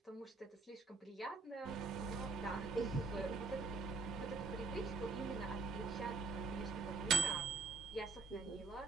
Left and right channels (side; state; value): left; quieter; 4.2 dB